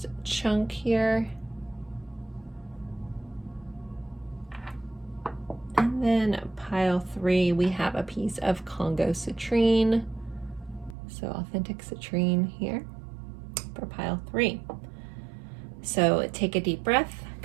chunk here. And then pile 3, we have a piece of Congo citrine. So authentic citrine here for pile 3. So take a deep breath.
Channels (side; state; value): left; drops out; at 11.0 s